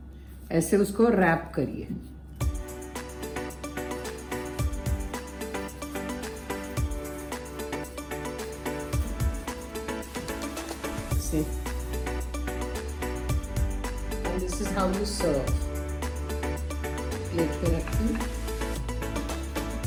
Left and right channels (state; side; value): identical; both; correlation 1.00